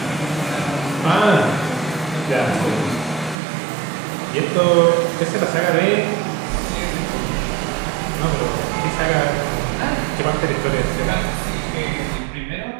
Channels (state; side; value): drops out; left; at 3.4 s